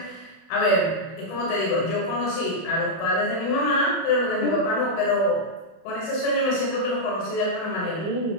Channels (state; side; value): late; right; 29 ms